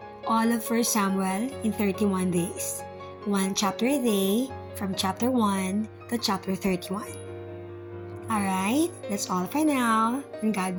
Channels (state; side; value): identical; both; correlation 1.00